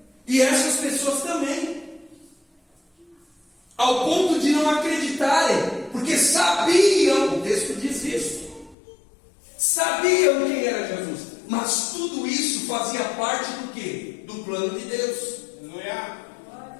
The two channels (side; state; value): right; drops out; at 8.8 s